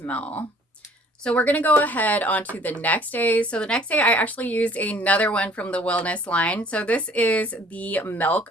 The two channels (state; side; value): normal; both; correlation 0.54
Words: So we're going to go ahead on to the next day. So the next day I actually used another one from the wellness line. So this is the Milk